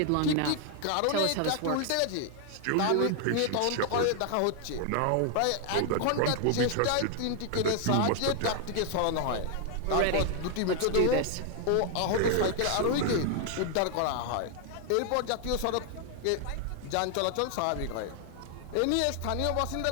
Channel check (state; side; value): different; both; correlation 0.00